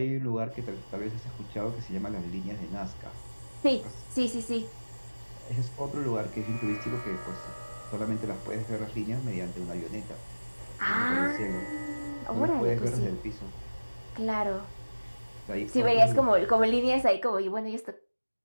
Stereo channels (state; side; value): inverted; both; correlation -1.00